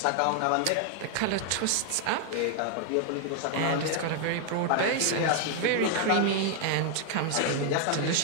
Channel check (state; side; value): different; both; correlation 0.00